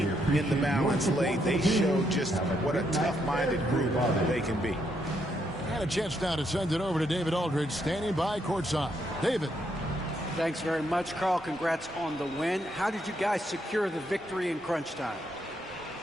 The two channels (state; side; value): normal; both; correlation 0.76